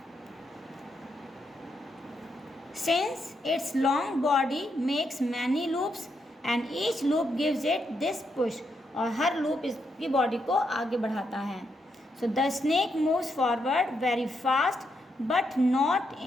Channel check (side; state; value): both; normal; correlation 0.80